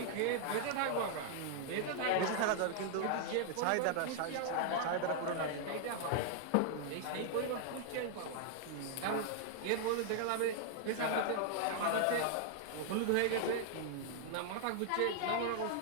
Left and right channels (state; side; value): different; both; correlation -0.01